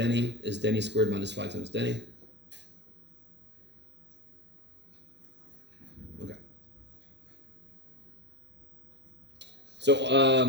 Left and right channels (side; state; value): left; late; 0.51 ms